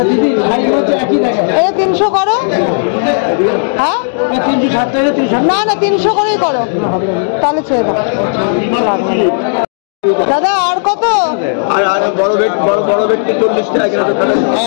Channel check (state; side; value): silent; right; digital silence